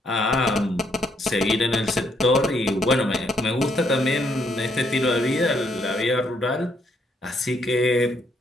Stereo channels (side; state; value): both; normal; correlation 0.72